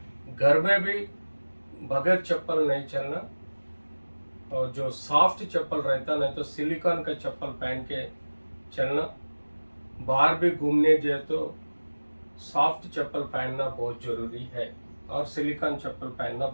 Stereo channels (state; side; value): inverted; both; correlation -1.00